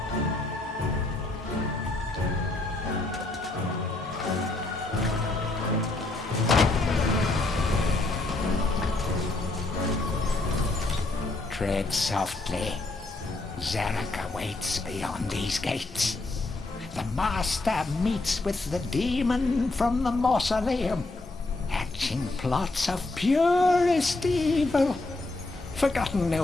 Tread softly. Zarek awaits beyond these gates. The Master meets with the demon from the mausoleum, hatching plots of purest evil. Forgotten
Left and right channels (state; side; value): quieter; right; 3.0 dB